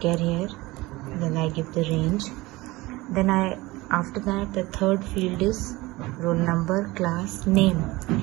here, then I give the range. Then after that the third field is roll number, class, name.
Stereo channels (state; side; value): quieter; left; 20.6 dB